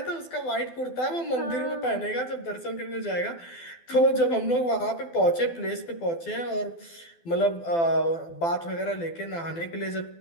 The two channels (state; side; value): late; right; 12 ms